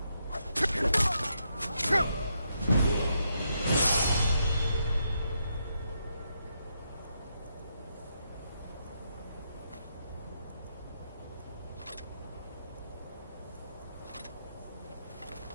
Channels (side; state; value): both; inverted; correlation -0.80